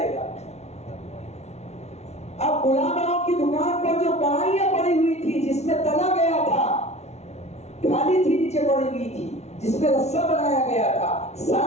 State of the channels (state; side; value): late; right; 0.31 ms